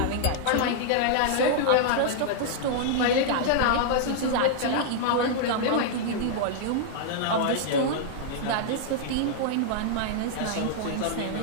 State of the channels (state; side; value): different; both; correlation -0.01